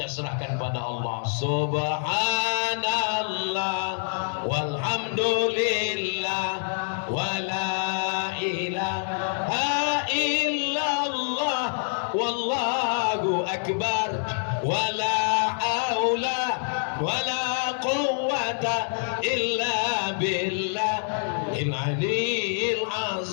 serahkan pada Allah. Subhanallah walhamdulillah wala ilaha illallah wallahu akbar wala haula wala quwwata illa billahil aliyil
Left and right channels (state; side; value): silent; right; 61 dB below the other